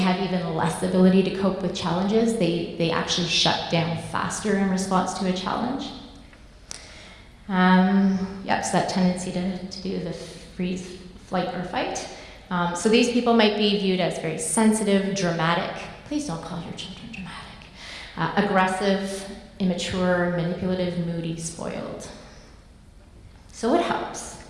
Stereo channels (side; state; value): both; identical; correlation 1.00